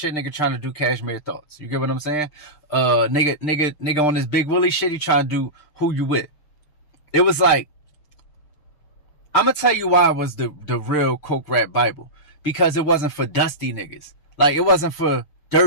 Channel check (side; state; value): right; late; 6.6 ms